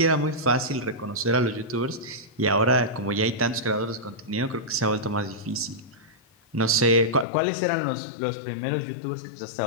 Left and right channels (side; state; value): right; drops out; at 7.2 s